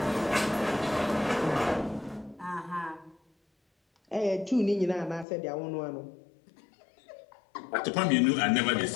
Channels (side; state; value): right; drops out; at 5.2 s